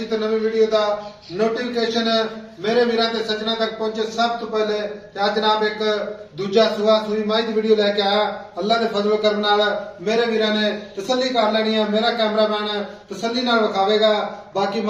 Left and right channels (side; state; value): both; identical; correlation 1.00